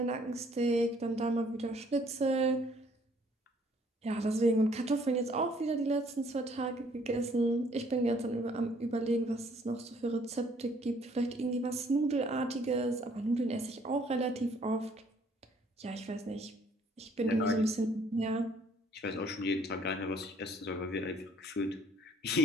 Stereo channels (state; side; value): normal; both; correlation 0.62